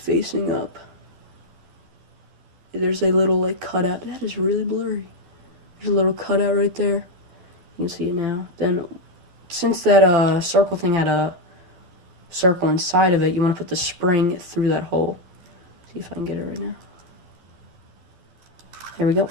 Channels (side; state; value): left; late; 12 ms